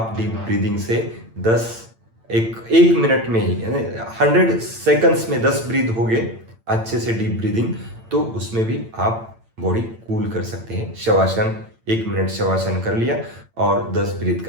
डीप ब्रीदिंग से 1 मिनट में ही, 100 सेकंड्स में 10 ब्रीथ हो गए अच्छे से डीप ब्रीदिंग, तो उसमें भी आप बॉडी कूल कर सकते हैं। शवासन 1 मिनट शवासन कर लिया और 10 ब्रीथ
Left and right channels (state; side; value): late; left; 8.9 ms